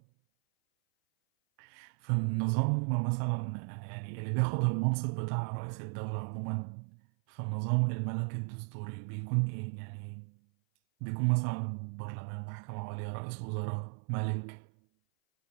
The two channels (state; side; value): silent; left; 55 dB below the other